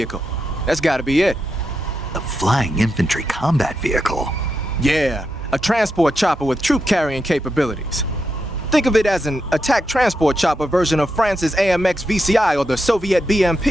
That's gotta be it. A flying infantry combat vehicle? Yeah, a transport chopper with troop-carrying capabilities. Think of it as an attack transport chopper version of France's AMX VCI or the Soviet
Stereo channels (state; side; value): normal; both; correlation 0.85